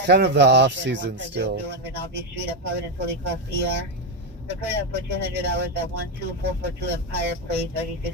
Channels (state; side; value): normal; both; correlation 0.07